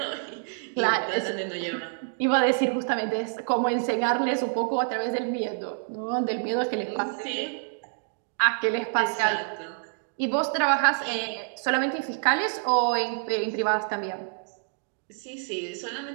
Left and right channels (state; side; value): silent; left; 60 dB below the other